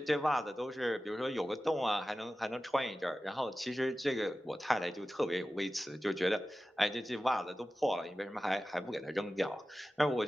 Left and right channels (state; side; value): normal; both; correlation 0.95